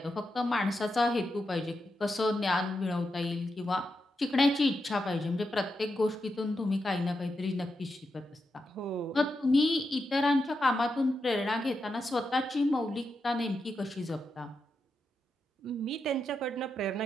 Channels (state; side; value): normal; both; correlation 0.86